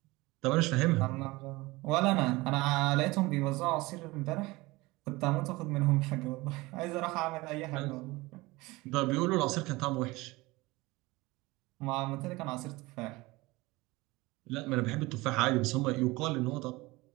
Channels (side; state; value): left; quieter; 21.6 dB